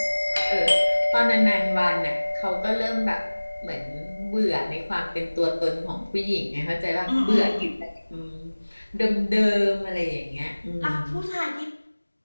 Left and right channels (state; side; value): inverted; both; correlation -1.00